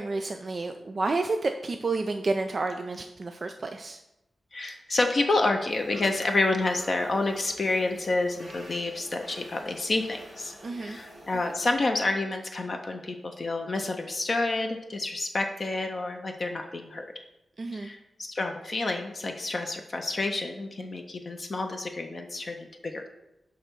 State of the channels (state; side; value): normal; both; correlation 0.91